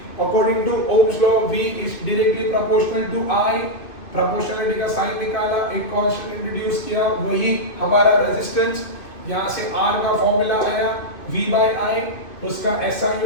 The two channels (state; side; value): late; right; 2.6 ms